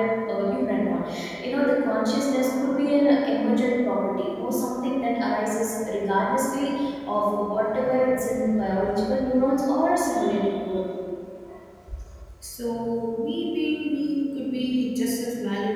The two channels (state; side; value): identical; both; correlation 1.00